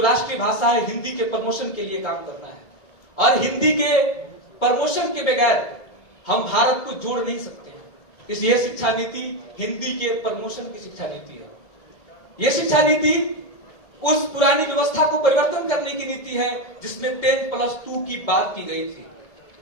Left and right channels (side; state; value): right; late; 1.7 ms